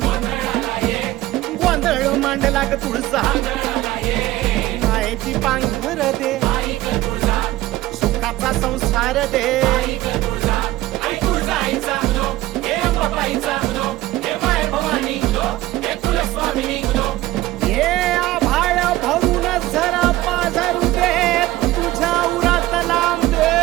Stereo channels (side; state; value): left; quieter; 16.6 dB